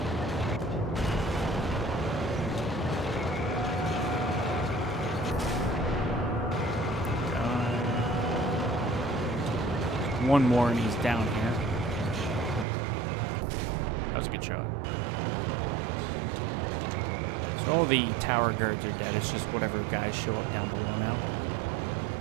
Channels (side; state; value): left; drops out; at 12.7 s